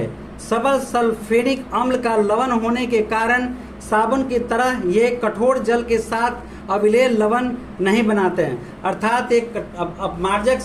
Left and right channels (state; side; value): identical; both; correlation 1.00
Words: सबल सल्फ्यूरिक अम्ल का लवण होने के कारण साबुन की तरह ये कठोर जल के साथ अविलेय लवण नहीं बनाते हैं, अर्थात एक अपमार्जक